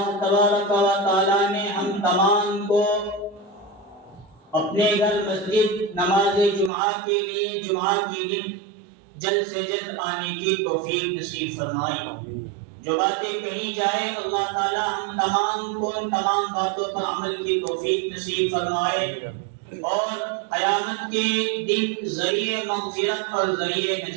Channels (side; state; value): left; drops out; at 6.7 s